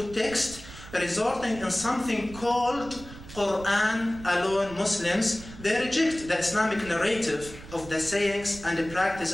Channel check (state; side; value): noise; right; rumble, 16 dB below the sound